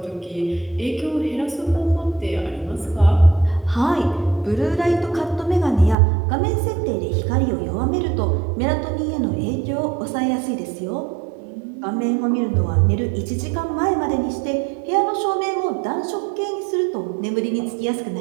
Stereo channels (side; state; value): left; drops out; at 6.0 s